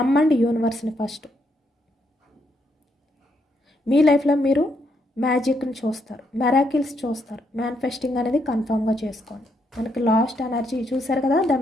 యూనివర్స్ని ఫస్ట్. మీ లైఫ్లో మీరు మ్యాజిక్ని చూస్తారు, మెరాకిల్స్ చూస్తారు. మేనిఫెస్టింగ్ అనేది కన్ఫామ్గా చేసుకోండి. మనకి లాస్ట్ ఎనర్జీ చూసారు కదా, the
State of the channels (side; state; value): both; normal; correlation 0.76